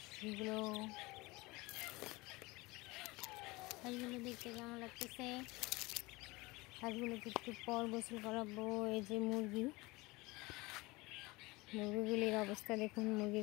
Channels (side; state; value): right; quieter; 22.8 dB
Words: দেখতে কেমন লাগতেছে। হাঁসগুলোকে একটু পর গোসল করাবো। এই যে মুরগিগুলির অবস্থা দেখুন,